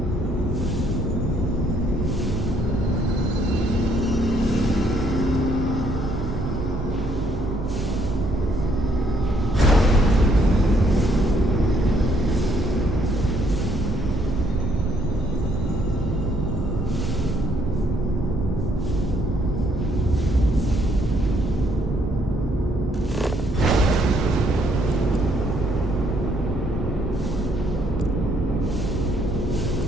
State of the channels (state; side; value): noise; right; hum, 8 dB below the sound